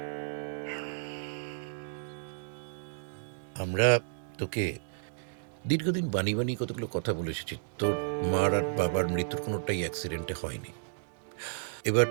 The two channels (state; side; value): silent; left; digital silence